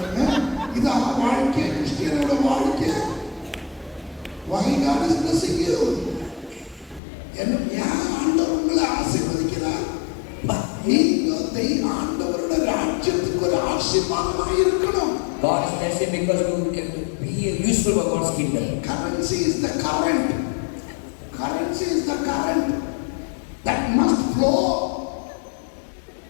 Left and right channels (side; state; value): right; drops out; at 7.0 s